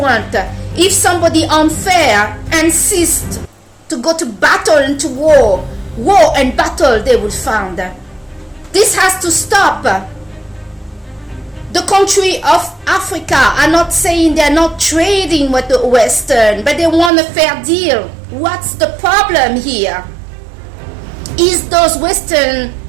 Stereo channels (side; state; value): left; drops out; at 17.1 s